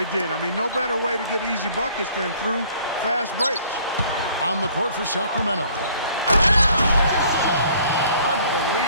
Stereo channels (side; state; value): both; inverted; correlation -0.57